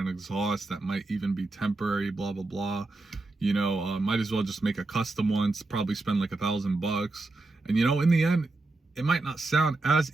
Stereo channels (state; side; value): quieter; left; 3.1 dB